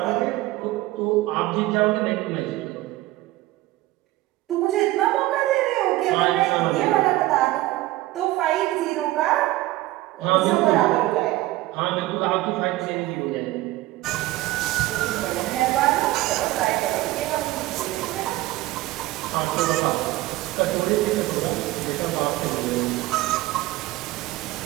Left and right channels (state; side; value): quieter; left; 17.6 dB